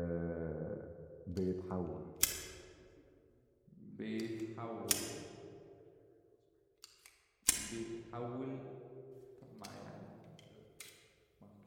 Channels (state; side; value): identical; both; correlation 1.00